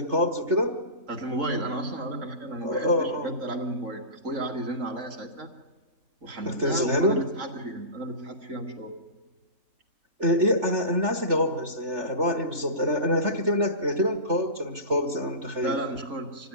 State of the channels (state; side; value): late; left; 3.4 ms